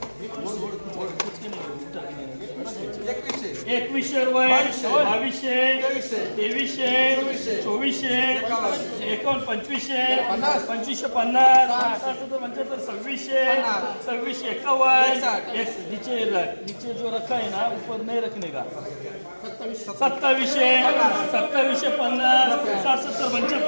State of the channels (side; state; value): both; inverted; correlation -1.00